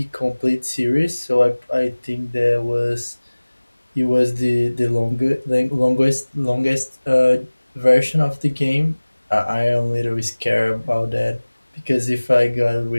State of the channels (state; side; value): inverted; both; correlation -1.00